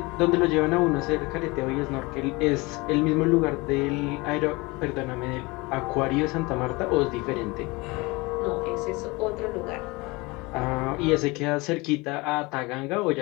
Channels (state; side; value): quieter; right; 24.5 dB